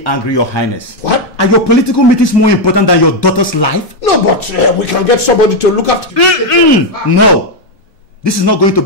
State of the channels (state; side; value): normal; both; correlation 0.04